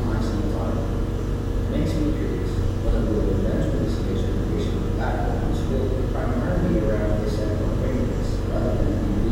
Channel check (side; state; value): both; identical; correlation 1.00